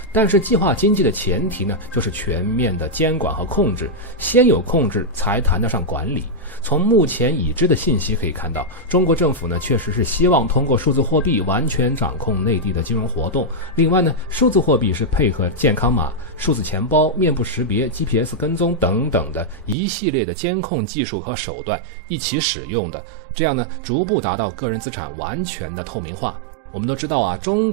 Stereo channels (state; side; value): drops out; left; at 19.8 s